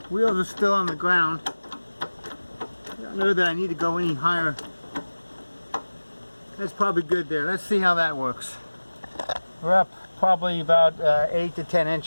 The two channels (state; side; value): inverted; both; correlation -1.00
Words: Wheels are still on the ground. I don't know that I need to go any higher. That's probably good there. Let's see how that works. We're up probably about 8 to 10